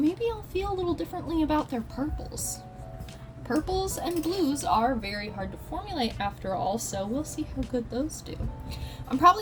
I'll feel a little differently about their purples. Purples and blues are very hard to formulate after all, so we'll see how good those do. I'm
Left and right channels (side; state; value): both; identical; correlation 1.00